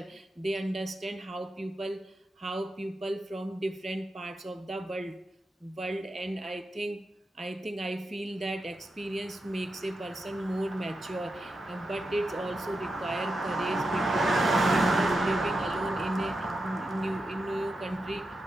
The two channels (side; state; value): both; normal; correlation 0.88